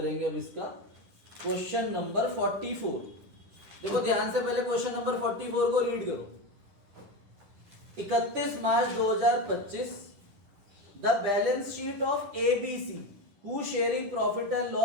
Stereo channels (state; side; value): late; left; 10 ms